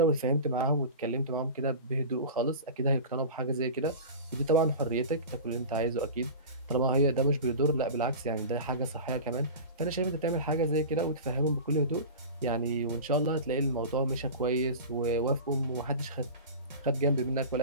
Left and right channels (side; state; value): both; inverted; correlation -0.32